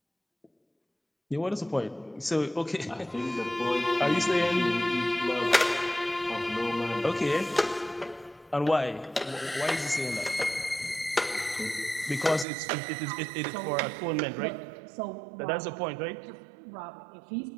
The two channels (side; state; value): left; drops out; at 12.5 s